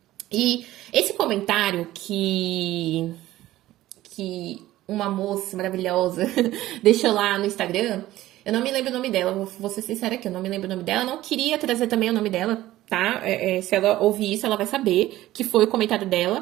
E esse comentário que uma moça maravilhosa deixou lá no Instagram, eu não me lembro o nome dela, vou ser sincera aqui, eu não me lembro o nome dela, eu não queria trazer também o nome dela, tá? Se ela ouvir isso, ela vai saber que foi o comentário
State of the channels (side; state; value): left; quieter; 15.4 dB